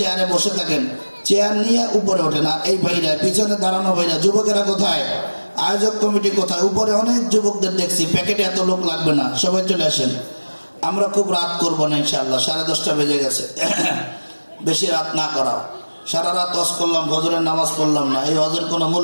বসে থাকেন, চেয়ার নিয়ে উপরে ওঠেন। আর এই ভাইরা পিছনে দাঁড়ানো ভাইরা, যুবকেরা কোথায়? আয়োজক কমিটি কোথায়? উপরে অনেক যুবকদের দেখছি, প্যাকেটে এত লোক লাগবে না, সবাই চলে আসেন। আমরা খুব রাত করবো না ইনশাআল্লাহ, 10:30 বেজে গেছে। বেশি রাত না করা। সারা রাত ওয়াজ করলাম, ফজরের নামাজ পড়লাম না, এই ওয়াজের কোনো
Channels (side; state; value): both; inverted; correlation -1.00